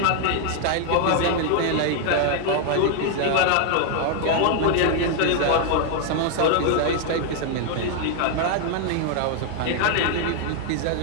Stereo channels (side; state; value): both; different; correlation 0.00